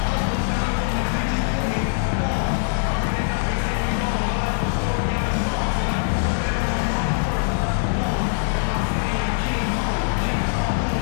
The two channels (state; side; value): silent; right; 64 dB below the other